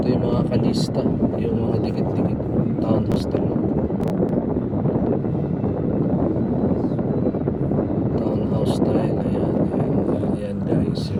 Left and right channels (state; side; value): identical; both; correlation 1.00